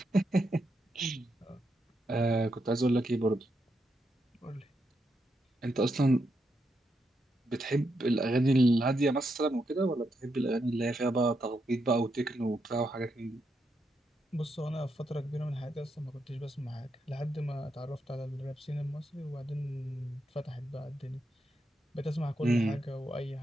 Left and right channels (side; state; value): both; normal; correlation 0.82